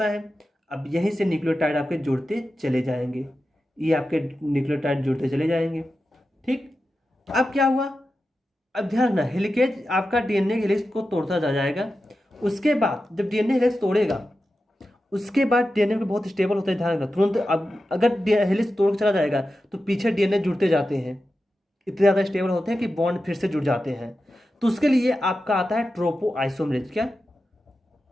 है, अब यहीं से न्यूक्लियोटाइड आपके जुड़ते चले जाएंगे, ये आपके न्यूक्लियोटाइड जुड़ते चले जाएंगे। ठीक, अब क्या हुआ, अब ध्यान रखना, हेलिकेज आपका डीएनए हेलिक्स को तोड़ता जा जाएगा। उसके बाद जब डीएनए हेलिक्स तोड़ेगा, उसके बाद डीएनए में बहुत स्टेबल होता है, ध्यान रखना तुरंत। अब अगर हेलिक्स तोड़ चला जाएगा तो पीछे डीएनए जुड़ते जाते हैं, इतने ज़्यादा स्टेबल होते हैं कि बॉन्ड फिर से जुड़ जाते हैं। तो उसके लिए आपका आता है ट्रोपो आइसोमेरेज। क्या,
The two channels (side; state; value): both; normal; correlation 0.91